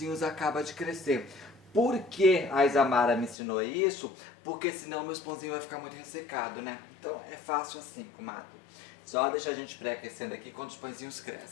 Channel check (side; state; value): right; drops out; at 3.4 s